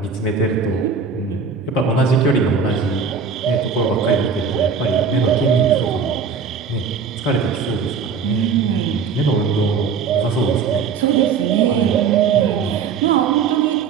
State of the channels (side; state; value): left; quieter; 5.9 dB